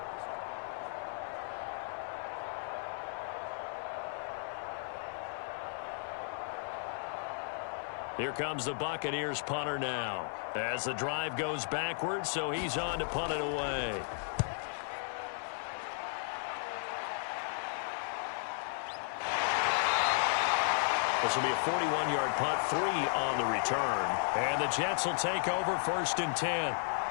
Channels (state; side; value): silent; right; 55 dB below the other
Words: Here comes the Buccaneers punter now. As the drive goes backwards, so he's on to punt it away. This will be a 41-yard punt, 3 on the return. And the Jets will take over 1st and 10.